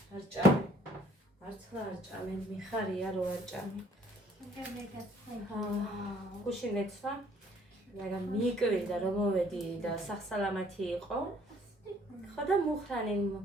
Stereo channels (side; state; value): both; normal; correlation 0.60